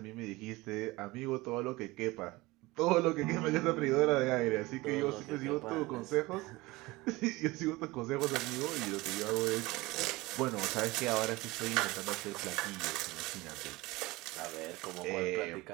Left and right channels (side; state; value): left; quieter; 21.2 dB